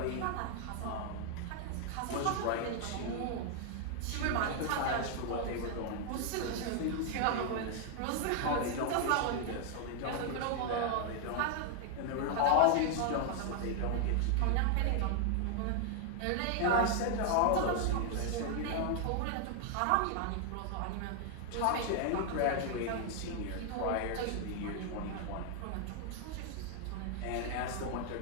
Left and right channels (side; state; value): both; different; correlation 0.00